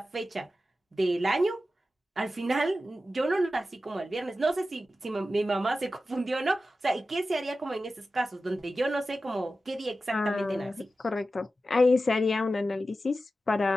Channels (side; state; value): both; normal; correlation 0.93